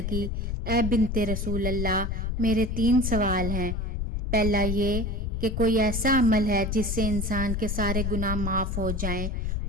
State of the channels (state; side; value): noise; left; rumble, 1 dB below the sound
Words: اے بنت رسول اللہ، میرے 3 سوال ہیں۔ پہلا یہ کہ کوئی ایسا عمل ہے جس سے انسان کے سارے گناہ معاف ہو جائیں،